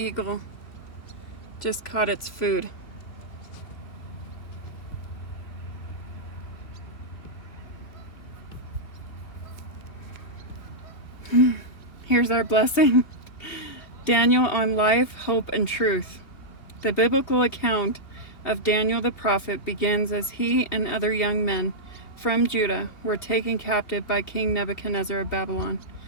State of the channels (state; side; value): late; right; 2.8 ms